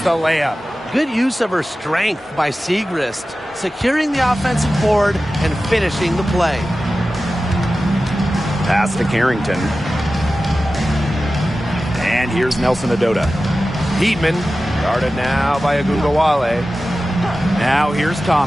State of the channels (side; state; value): both; normal; correlation 0.95